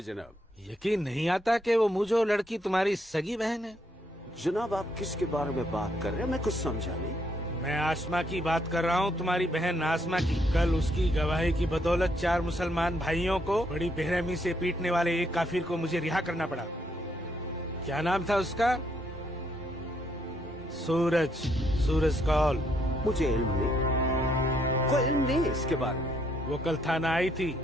जनाब। यकीन नहीं आता कि वो मुझे लड़की तुम्हारी सगी बहन है। जनाब आप किसके बारे में बात कर रहे हैं? मैं कुछ समझा नहीं। मैं आसमा की बात कर रहा हूँ, तुम्हारी बहन आसमा की। कल उसकी गवाही की बदौलत 4 मुसलमान भाइयों को बड़ी बेरहमी से पीटने वाले एक काफिर को मुझे रिहा करना पड़ा। क्या नाम था उसका? सूरज कौल। मुझे इल्म नहीं, कोई इल्म नहीं इसके बारे में। वो कल थाना आई थी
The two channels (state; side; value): normal; both; correlation 0.73